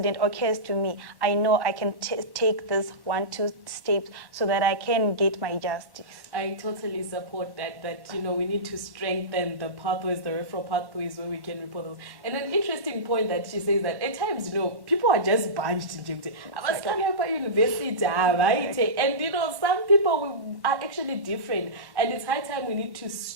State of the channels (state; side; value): late; left; 1.1 ms